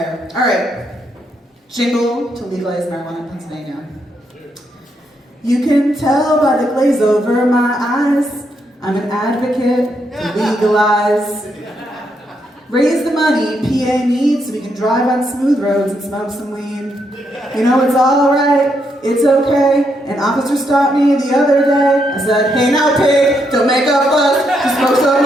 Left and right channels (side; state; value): both; normal; correlation 0.78